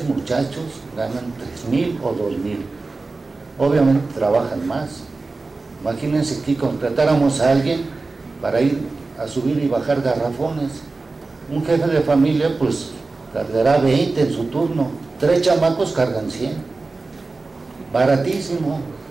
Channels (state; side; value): quieter; left; 3.7 dB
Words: muchachos ganan 3,000 o 2,000. Obviamente trabajan más. Imagínense que contratáramos a alguien para ir a subir y bajar garrafones. Un jefe de familia pues cargará 20 en su turno, 3 chamacos cargan 100, baratísimo.